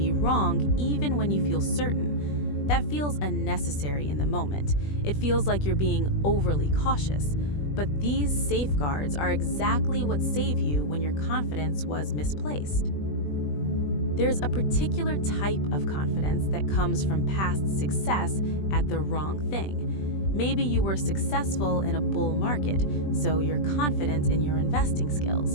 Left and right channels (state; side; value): late; right; 20 ms